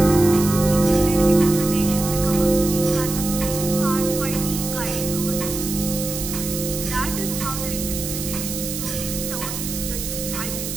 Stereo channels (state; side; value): noise; right; hiss, 6 dB below the sound